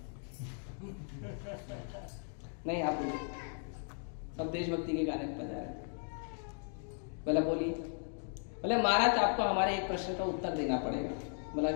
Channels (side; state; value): right; silent; 53 dB below the other